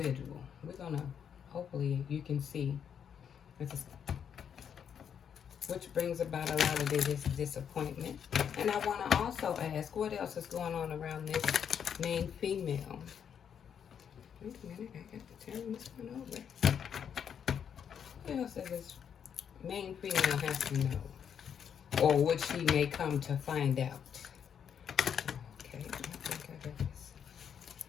We're going to, hopefully you can see, which brings about a lot of this disappointment. And I want to also ask, what else is going on around this main female? Wait a minute, I got to turn this one over. What else does this main female have to know? Or what she may come to find out? Okay, I think I got this.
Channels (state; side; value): quieter; right; 8.0 dB